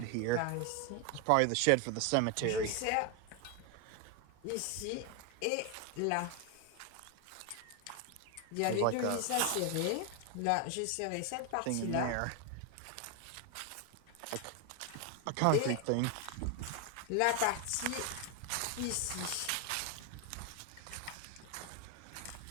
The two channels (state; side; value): different; both; correlation 0.01